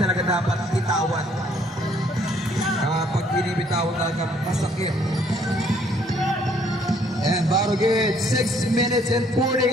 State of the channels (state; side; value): normal; both; correlation 0.64